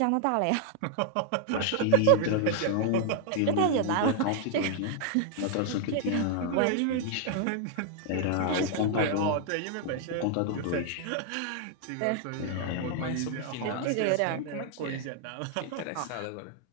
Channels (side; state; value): both; different; correlation 0.00